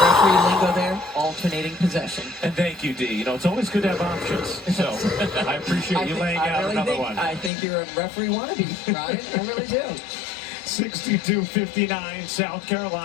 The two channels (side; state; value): right; drops out; at 7.5 s